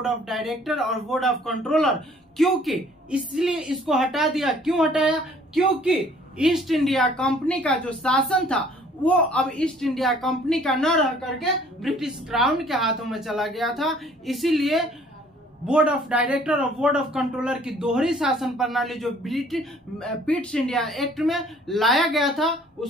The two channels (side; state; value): both; normal; correlation 0.57